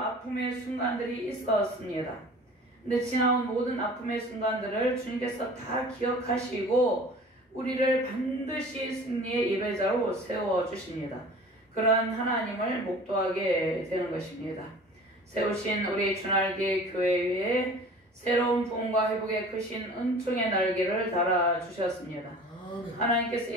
순간들이 있었습니다. 근데 지나온 모든 아픔의 순간들을 주님께서 다 기억하시고 우리를 반드시 승리의 예배자로 세워주십니다. 그런 하나님을 목도하게 되는 것입니다. 세우신 우리 주날개 교회 위에 새로운 부흥과 회복의 크신 은총의 날개를 달아주셨습니다. 하나님께서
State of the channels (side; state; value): both; normal; correlation 0.44